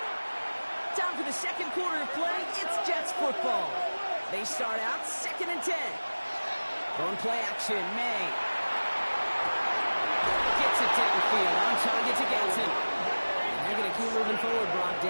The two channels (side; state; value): both; inverted; correlation -1.00